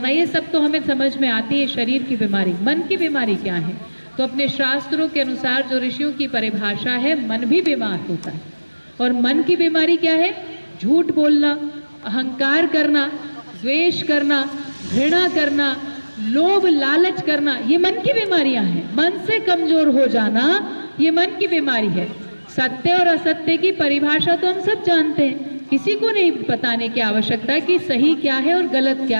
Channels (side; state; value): both; inverted; correlation -1.00